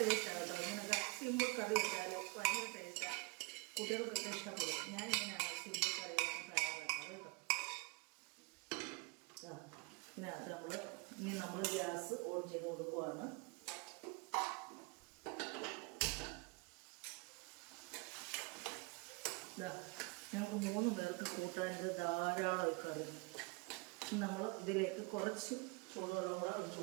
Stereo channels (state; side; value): quieter; left; 29.0 dB